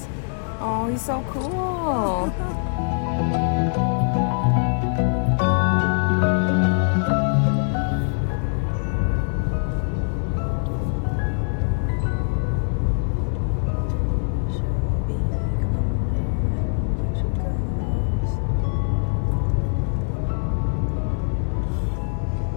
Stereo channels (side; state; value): right; silent; digital silence